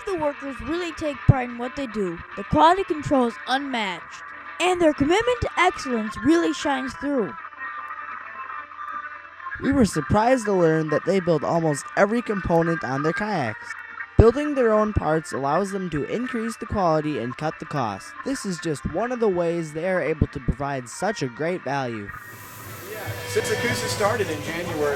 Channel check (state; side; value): identical; both; correlation 1.00